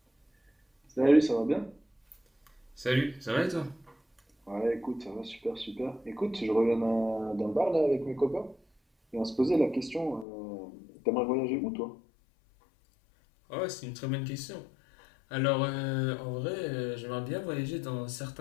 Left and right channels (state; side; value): drops out; right; at 10.2 s